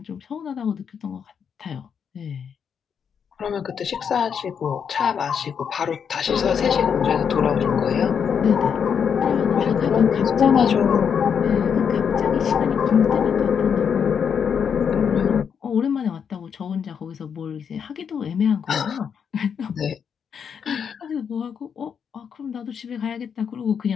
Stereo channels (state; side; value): quieter; right; 7.2 dB